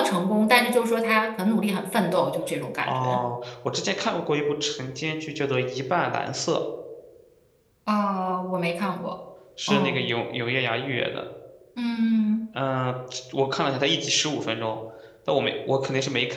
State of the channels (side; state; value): both; identical; correlation 1.00